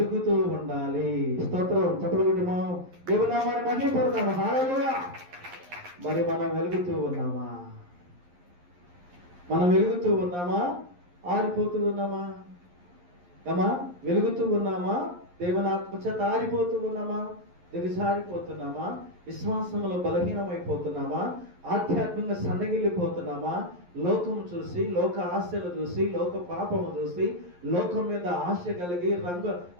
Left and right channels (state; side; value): late; left; 11 ms